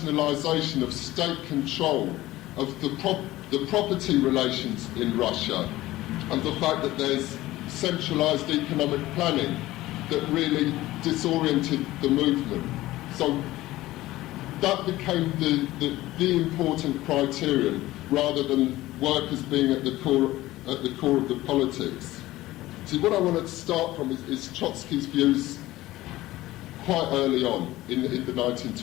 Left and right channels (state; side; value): quieter; right; 17.0 dB